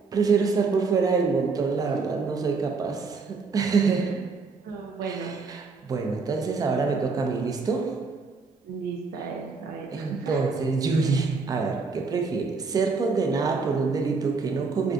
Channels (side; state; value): left; quieter; 4.5 dB